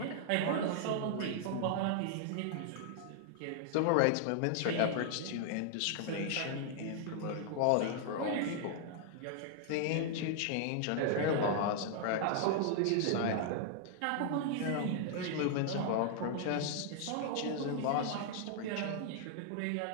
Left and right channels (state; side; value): different; both; correlation 0.00